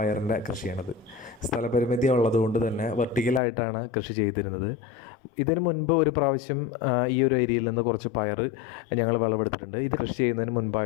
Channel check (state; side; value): drops out; right; at 3.4 s